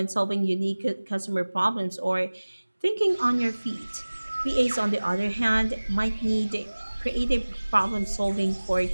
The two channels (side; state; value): both; inverted; correlation -1.00